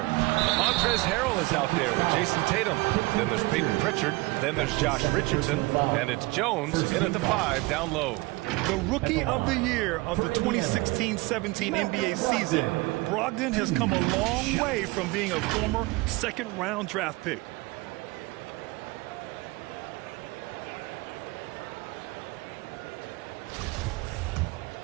Montrezl Harrell is out there with Jason Tatum. Then there's Peyton Pritchard. Then there's Josh Richardson. And it's Jones in at the 5 down low. The Rookie of the Year of the 2016-17 NBA season, Brogdon has come a long way from being a former second-round draft pick.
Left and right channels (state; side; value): quieter; left; 22.9 dB